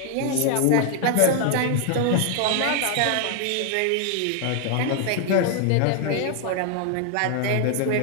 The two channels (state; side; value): different; both; correlation 0.00